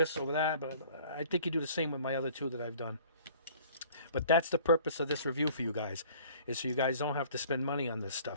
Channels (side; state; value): both; inverted; correlation -0.51